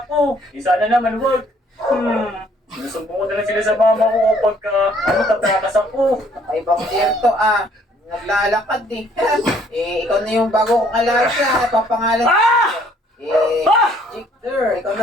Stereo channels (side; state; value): both; normal; correlation 0.62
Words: ako. Eh sana naman wag. Sinusumbong ko na lang sila sa mama ko pagka tatakas ako. Ay, bang dear to ah. Naglalakad eh. Ikaw na yung bago kong alaga. Papangalan Jake Deer. Ikaw